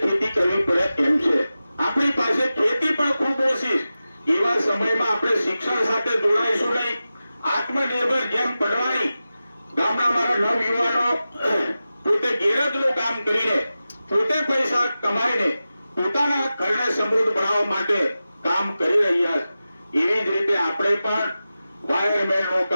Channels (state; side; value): inverted; both; correlation -0.94